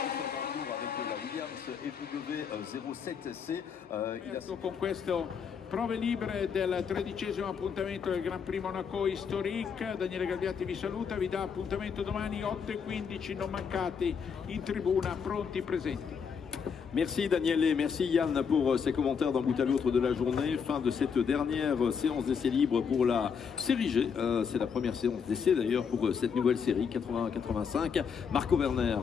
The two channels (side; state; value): right; quieter; 6.5 dB